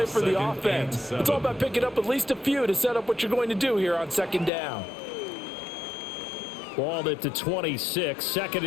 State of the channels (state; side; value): drops out; right; at 4.5 s